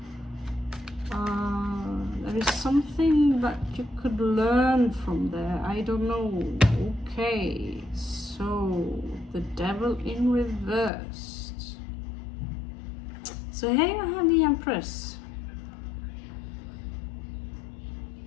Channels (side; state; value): right; drops out; at 10.9 s